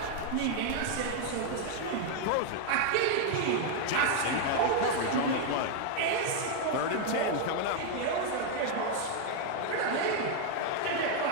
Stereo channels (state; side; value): different; both; correlation 0.00